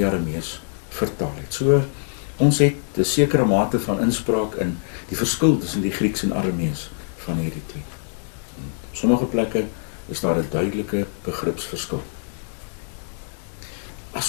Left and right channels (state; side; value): silent; right; digital silence